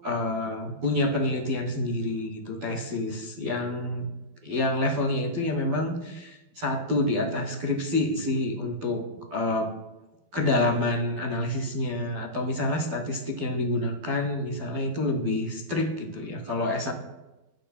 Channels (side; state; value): left; late; 12 ms